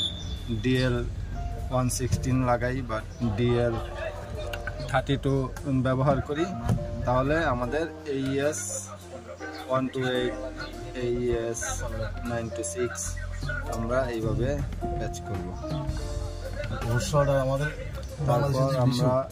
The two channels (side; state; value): both; identical; correlation 1.00